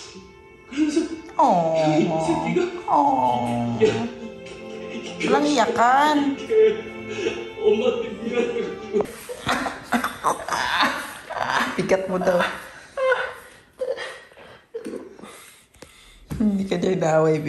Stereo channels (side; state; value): both; identical; correlation 1.00